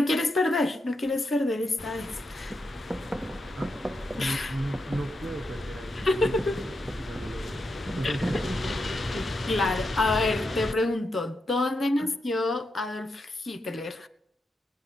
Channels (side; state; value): both; normal; correlation 0.85